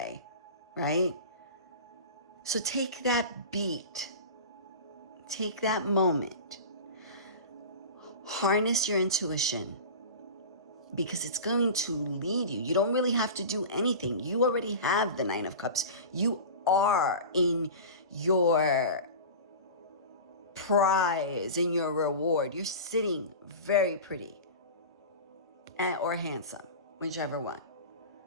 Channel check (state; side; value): inverted; both; correlation -0.32